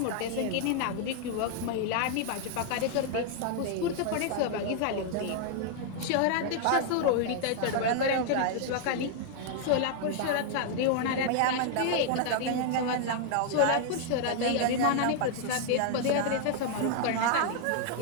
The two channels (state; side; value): different; both; correlation 0.00